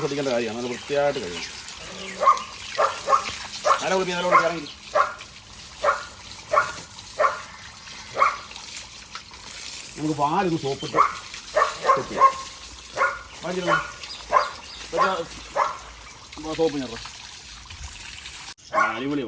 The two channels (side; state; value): both; identical; correlation 1.00